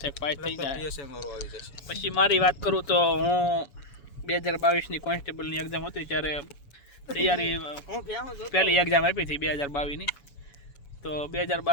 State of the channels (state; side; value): late; right; 7.1 ms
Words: છે કે પાસ થઈ જાય। પછી મારી વાત કરું તો હું 2022ની કોન્સ્ટેબલની એક્ઝામ હતી ત્યારે તૈયારી, પહેલી એક્ઝામ આપી હતી 2022ની, તો